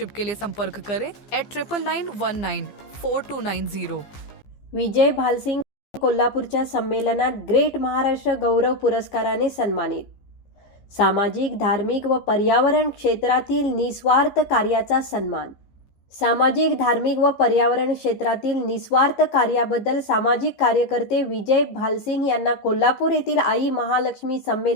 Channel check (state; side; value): late; right; 15 ms